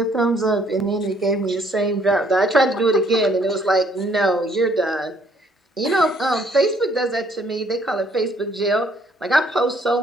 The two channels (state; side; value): normal; both; correlation 0.64